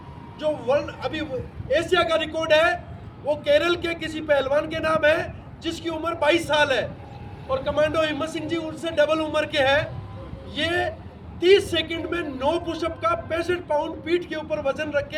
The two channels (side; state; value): both; identical; correlation 1.00